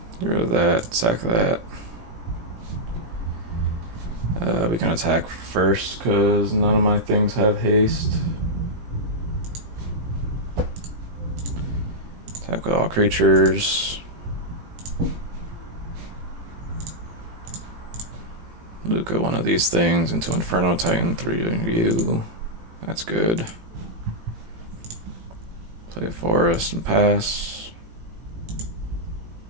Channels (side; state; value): left; late; 18 ms